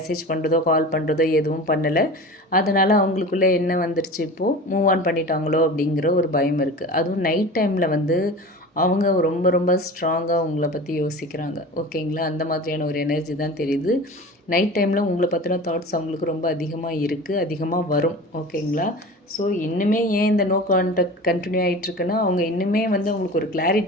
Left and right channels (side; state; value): both; normal; correlation 0.35